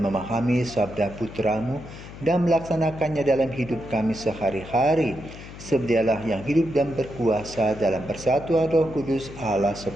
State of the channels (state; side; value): noise; left; hum, 14 dB below the sound